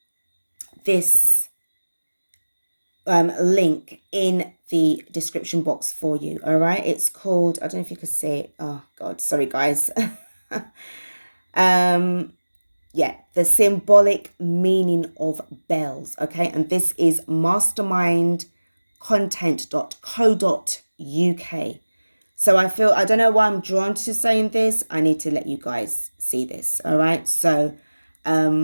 link in the description box for you. All right, it's called, I don't know if you can see it. Oh God, sorry guys. Yeah, the symbolic meaning of bells. Okay, and this is mastermindcontent.co.uk. So I feel, I don't know why I'm drawn to saying this. I need to let you guys see this. All right, so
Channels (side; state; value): both; inverted; correlation -1.00